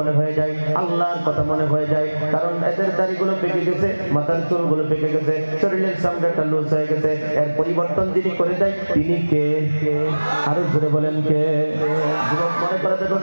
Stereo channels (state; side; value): inverted; both; correlation -1.00